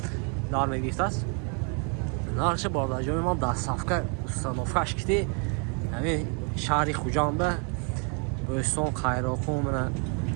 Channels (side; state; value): left; quieter; 38.3 dB